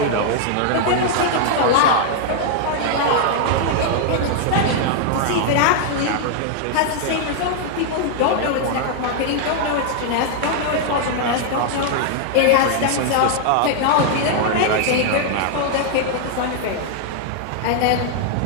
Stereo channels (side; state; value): both; different; correlation 0.00